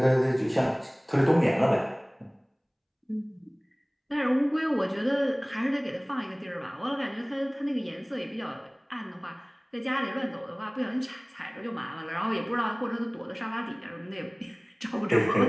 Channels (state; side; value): identical; both; correlation 1.00